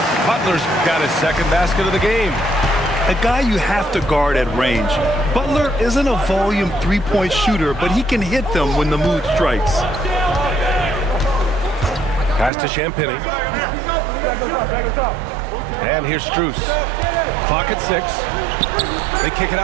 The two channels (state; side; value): drops out; left; at 12.5 s